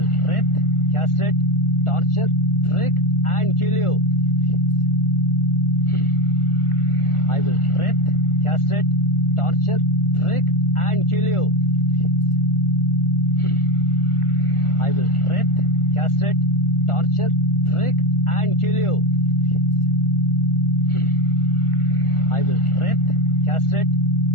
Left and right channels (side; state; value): right; late; 1.4 ms